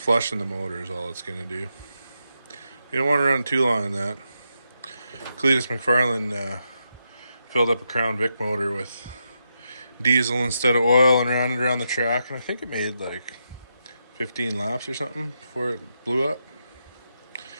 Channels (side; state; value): both; inverted; correlation -0.84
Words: the motor is all it's going to do. You don't want to run too long in that. Cletus McFarlane filled up a Crown Vic motor with diesel instead of oil and ran it around the track, and I think it made like 15 laps or something before it blew up,